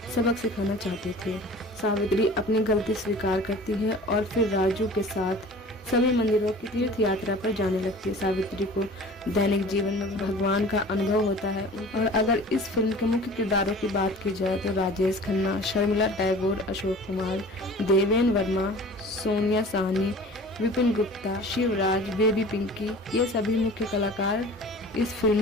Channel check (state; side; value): normal; both; correlation 0.43